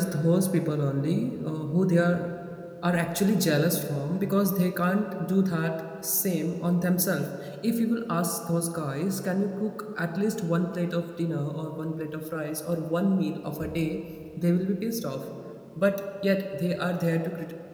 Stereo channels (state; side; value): identical; both; correlation 1.00